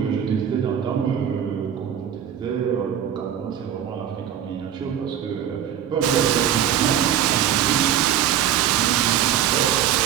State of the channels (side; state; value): left; quieter; 10.0 dB